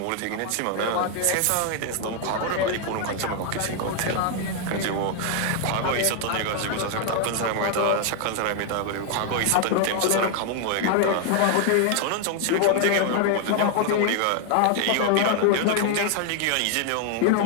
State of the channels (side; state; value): both; different; correlation 0.00